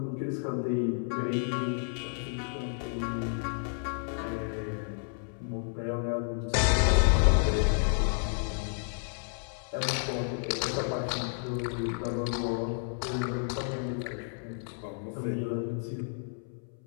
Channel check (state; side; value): silent; right; 57 dB below the other